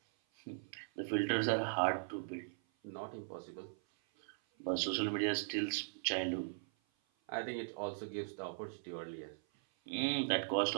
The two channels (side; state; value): left; silent; 52 dB below the other